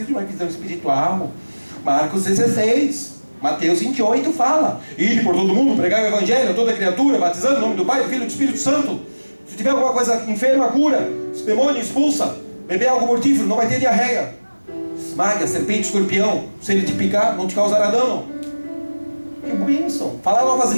de uma visão espiritual. Marcos 16, Mateus 28 fala: ide por todo mundo, pregar o evangelho a toda criatura, batizando em nome do Pai, do Filho e do Espírito Santo. Se tiver alguma coisa enferma, cura. Se demônio, expulsa. Beber algo mortífero, não vai ter diarreia. Esmaga, serpente, escorpião. Se ele te picar, não te causará dano. Que bênção. Falar novas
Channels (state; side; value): inverted; both; correlation -1.00